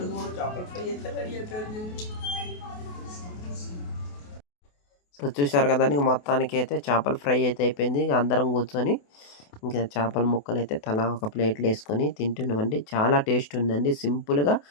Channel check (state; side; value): late; right; 28 ms